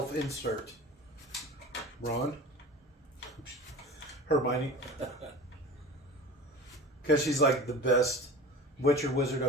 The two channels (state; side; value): normal; both; correlation 0.36